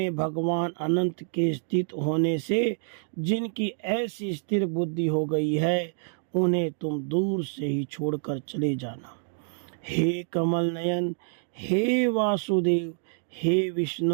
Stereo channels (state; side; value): silent; left; digital silence